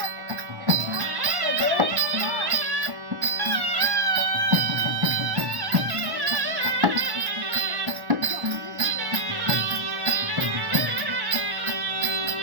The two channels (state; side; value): late; left; 1.1 ms